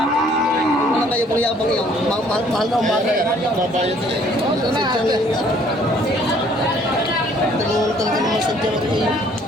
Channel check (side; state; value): both; normal; correlation 0.60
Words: Wala kayo pang yabang iyo. Mahal na umaga. Mabayad na eh. Dalawang talaga naman sa dyan ako iyo.